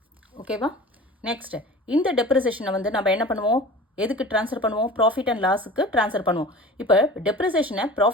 ஓகேவா? நெக்ஸ்ட் இந்த டெப்ரிசியேஷனை வந்து நம்ம என்ன பண்ணுவோம்? எதுக்கு ட்ரான்ஸ்ஃபர் பண்ணுவோம்? ப்ராஃபிட் அண்ட் லாஸுக்கு ட்ரான்ஸ்ஃபர் பண்ணுவோம். இப்போ டெப்ரிசியேஷனை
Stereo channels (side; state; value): both; normal; correlation 0.39